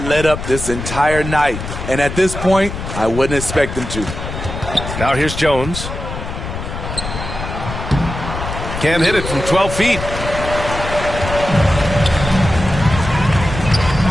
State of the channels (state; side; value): noise; left; rumble, 7 dB below the sound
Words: let up this entire night. And at this point, I wouldn't expect them to. Now here's Jones. Can't hit it from 12 feet.